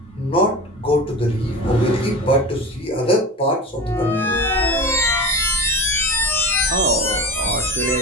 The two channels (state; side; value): normal; both; correlation 0.31